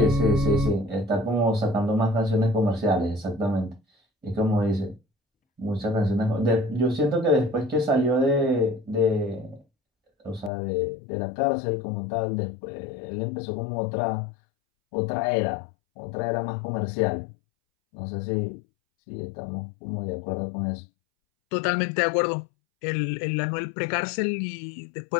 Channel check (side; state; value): right; drops out; at 10.5 s